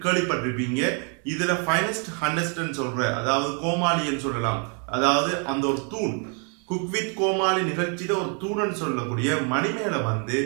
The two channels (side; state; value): left; quieter; 38.8 dB